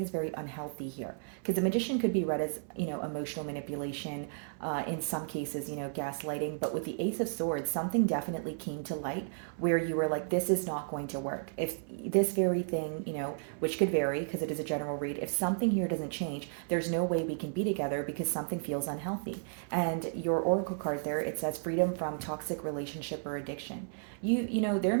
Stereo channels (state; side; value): silent; left; 56 dB below the other